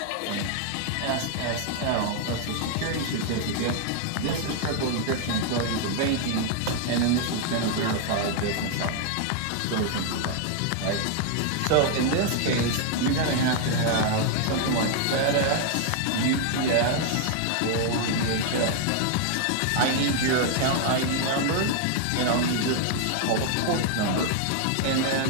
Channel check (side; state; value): both; different; correlation 0.00